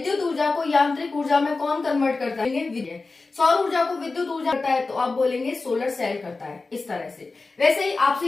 ऊर्जा को यांत्रिक ऊर्जा में कौन कन्वर्ट करता है, सौर ऊर्जा को विद्युत ऊर्जा करता है, तो आप बोलेंगे सोलर सेल करता है, इस तरह से। वैसे ही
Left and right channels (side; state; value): right; quieter; 3.7 dB